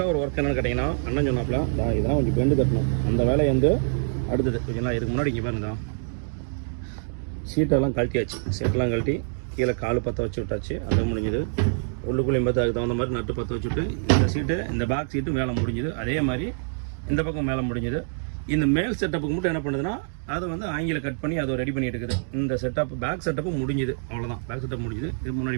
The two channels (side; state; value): left; silent; digital silence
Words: ஒரு ஒர்க் என்னென்னு கேட்டிங்கன்னா, அண்ணன் சொன்னாப்புல இதெல்லாம் கொஞ்சம் பெண்டு கட்டணும். அந்த வேலையை வந்து அடுத்தது கொஞ்சம் இதுக்கு முன்னாடி இங்கே பாருங்க, சீட்டெல்லாம் கழட்டியாச்சு. சீட்டெல்லாம் கழட்டி கீழே கால் பற்ற வச்சு விட்டாச்சு. அது முடிஞ்சுது. உள்ளுக்குள்ளேயும் பார்த்து அதுக்கு தகுந்த மாதிரி நட்டு பற்ற வச்சுட்டு இந்த சீட்டு, இந்த பேக் சீட்டு மேலே முடிஞ்சுது. அதே மாதிரி இந்த பக்கம் மேலே முடிஞ்சுது. இந்த மேல் செட்டப்புக்கு மட்டும் என்ன பண்ணுதுன்னா, அதை வந்து ஆங்கில கட் பண்ணி அதை ரெடி பண்ணிட்டு இருக்குது. இந்த செட்டப் பேக் செட்டப்பு முடிஞ்சுது. அவ்வளோதான், பேக் செட்டப் முடிஞ்சுது. இது முன்னாடி